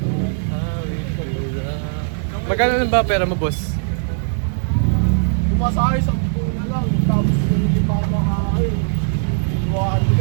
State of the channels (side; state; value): left; silent; 56 dB below the other